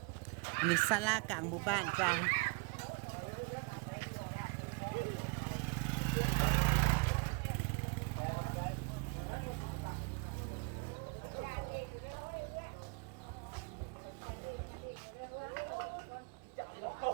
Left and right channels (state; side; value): quieter; left; 33.2 dB